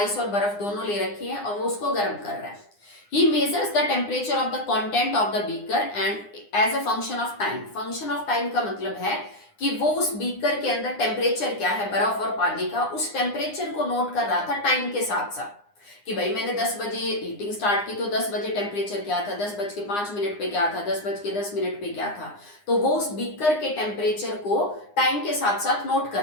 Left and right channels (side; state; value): right; late; 9.8 ms